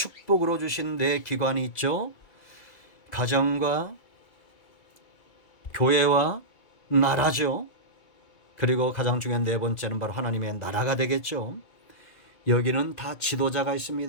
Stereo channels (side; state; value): right; late; 2.3 ms